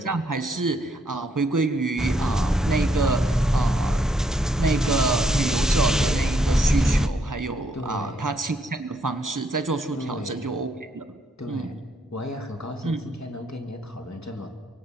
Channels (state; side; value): normal; both; correlation 0.73